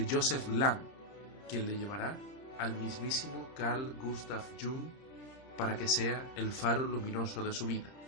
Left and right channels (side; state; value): right; late; 30 ms